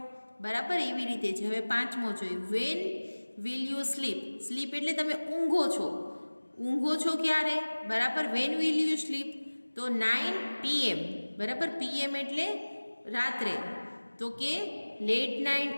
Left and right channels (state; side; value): inverted; both; correlation -1.00